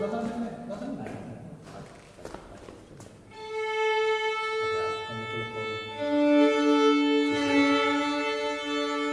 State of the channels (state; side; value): identical; both; correlation 1.00